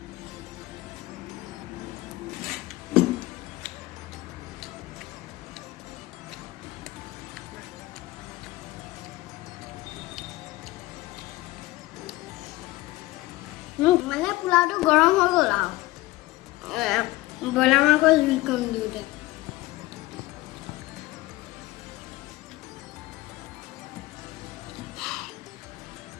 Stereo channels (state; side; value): quieter; right; 19.0 dB